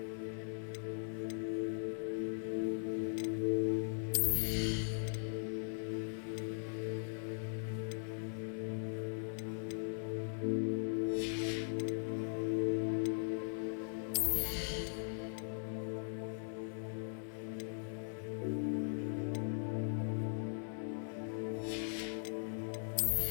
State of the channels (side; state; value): right; silent; digital silence